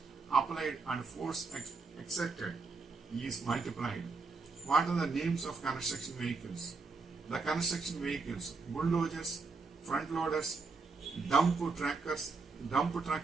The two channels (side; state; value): left; quieter; 4.2 dB